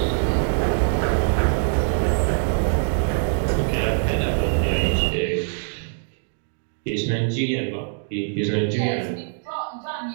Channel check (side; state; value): left; silent; digital silence